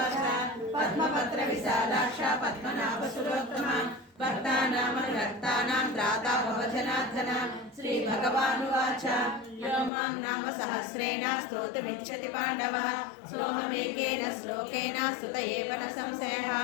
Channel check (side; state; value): right; drops out; at 9.9 s